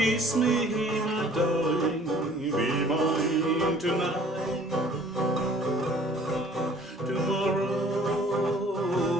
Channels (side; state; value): both; normal; correlation 0.53